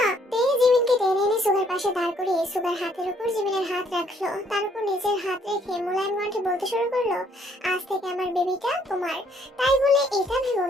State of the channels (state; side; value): normal; both; correlation 0.66